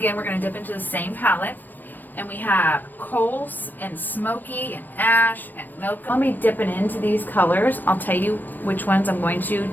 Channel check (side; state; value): right; late; 0.091 ms